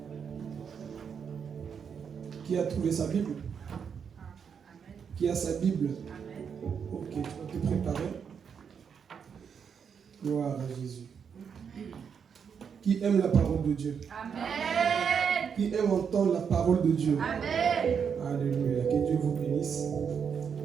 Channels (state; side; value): quieter; left; 6.9 dB